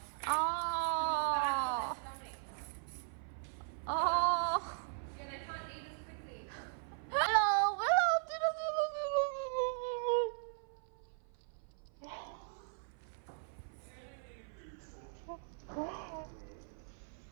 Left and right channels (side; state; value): left; silent; 52 dB below the other